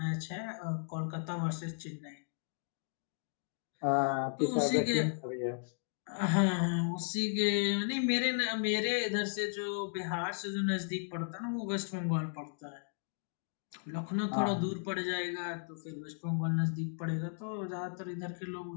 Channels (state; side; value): silent; right; digital silence